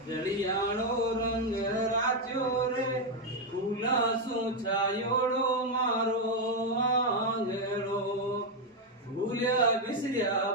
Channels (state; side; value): normal; both; correlation 0.03